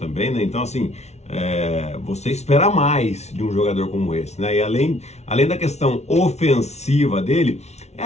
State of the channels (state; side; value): late; right; 0.32 ms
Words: né? Então, assim, você espera mais de um jogador como esse, né? E além da questão ofensiva dele, é